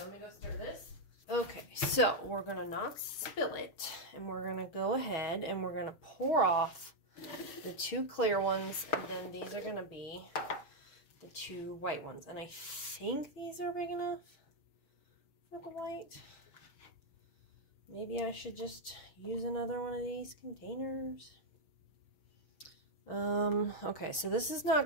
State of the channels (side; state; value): right; late; 6.3 ms